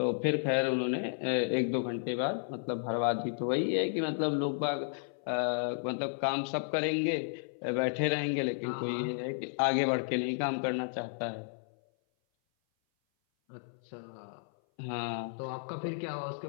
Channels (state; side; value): silent; right; 56 dB below the other